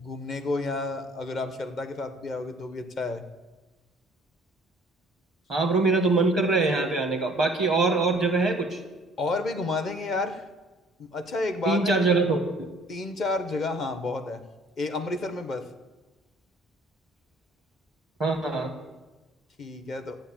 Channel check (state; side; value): normal; both; correlation 0.56